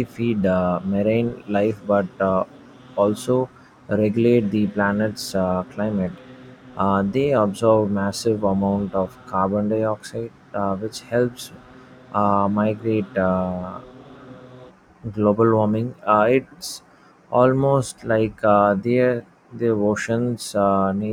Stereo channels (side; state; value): both; identical; correlation 1.00